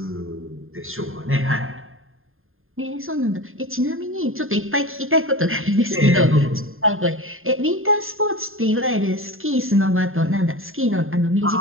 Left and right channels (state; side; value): late; left; 0.60 ms